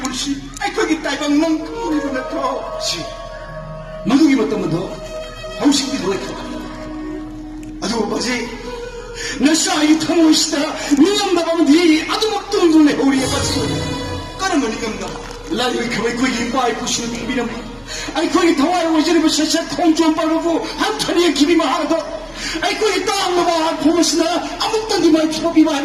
시, 거기 딸방 넌 그물이로 넣고. 시. 마누기 봤다면 더. 하우식 비도가 있다. 아주 뭐지? 나 싸이 타모시다. 니가 나가면 니 아주 막 뚱뚱해. 우리에 빠지고. 까르면 이겁나. 라디오에 그왜 거기 빠이 부시는 비비는 아이 거기 더와요 오지르고 셔셔 통좀 빠르고 한 털이에 기비만 하나도 아이 거기 땅 먹어 보면서나 아무것도 니말 피고비만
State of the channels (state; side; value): identical; both; correlation 1.00